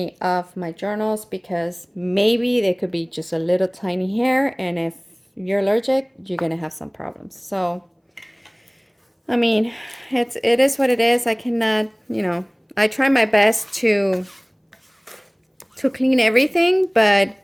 of my journals, because maybe they could be just a little tiny hair, and if you're allergic, you're gonna have some problems. So I mean, it is what it is. I cannot, you know, I try my best to clean everything, but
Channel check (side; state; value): both; identical; correlation 1.00